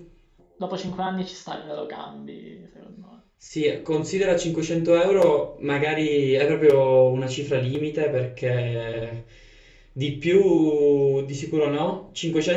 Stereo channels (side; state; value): both; identical; correlation 1.00